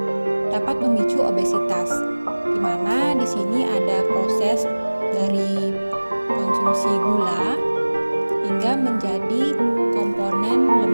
dapat memicu obesitas, di mana di sini ada proses dari konsumsi gula hingga menjadi komponen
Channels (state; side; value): inverted; both; correlation -1.00